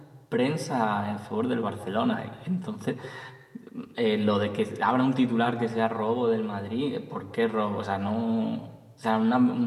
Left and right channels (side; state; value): both; identical; correlation 1.00